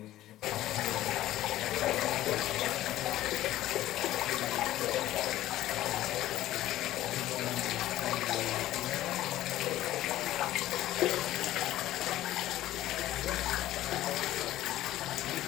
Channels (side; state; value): right; quieter; 14.5 dB